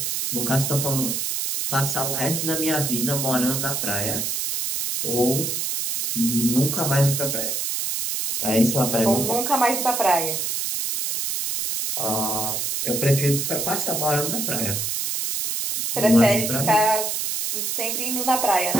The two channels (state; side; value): noise; right; hiss, 1 dB below the sound